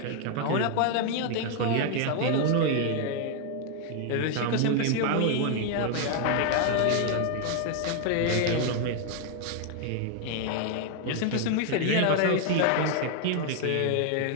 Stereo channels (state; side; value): different; both; correlation 0.00